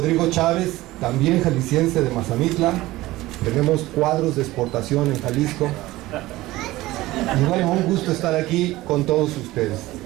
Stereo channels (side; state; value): left; quieter; 17.9 dB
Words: Chávez, también jalisciense de Mazamitla. Tenemos cuadros de exportación en Jalisco, y bueno, un gusto estar aquí con todos ustedes.